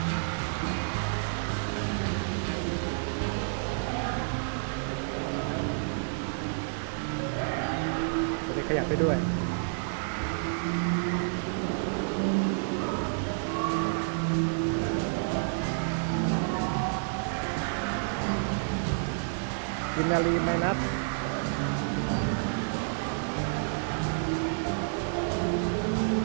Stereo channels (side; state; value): left; silent; 58 dB below the other